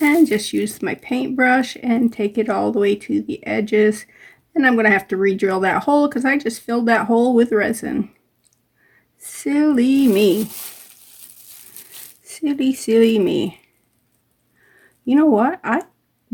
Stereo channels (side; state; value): both; identical; correlation 1.00